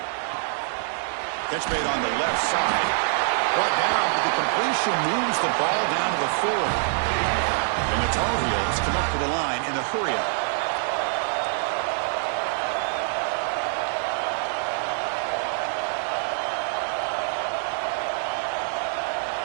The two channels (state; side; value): silent; left; 62 dB below the other